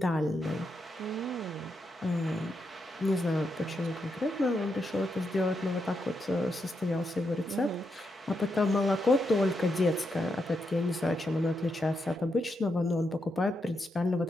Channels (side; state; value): both; normal; correlation 0.83